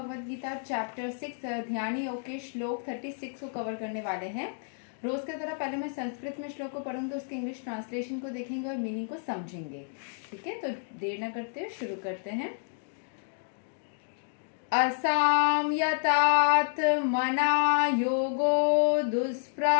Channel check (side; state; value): right; silent; digital silence